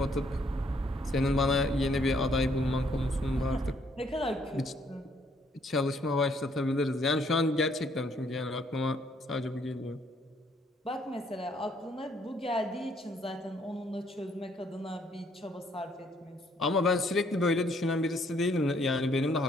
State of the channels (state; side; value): normal; both; correlation 0.67